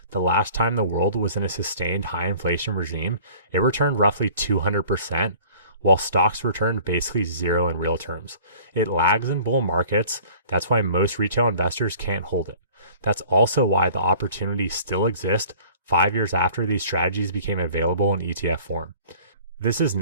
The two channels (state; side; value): inverted; both; correlation -0.48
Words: the last time the world was in a sustained high inflation regime, it returned roughly 200%, while stocks returned basically zero in real terms. It lags in bull markets. That's why most retail investors can't hold it. That's also why the opportunities still exist 5 years after these strategies became available in ETF form. This is